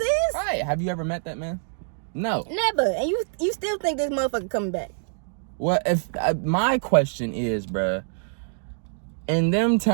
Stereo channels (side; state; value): left; silent; digital silence